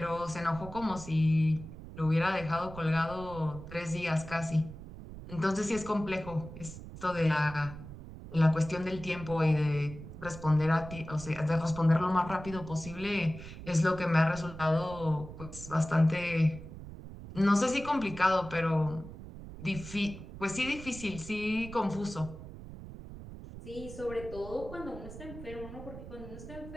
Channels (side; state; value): right; noise; rumble, 13 dB below the sound